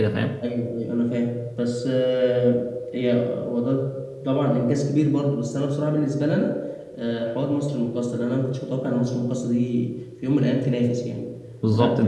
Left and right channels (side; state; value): both; identical; correlation 1.00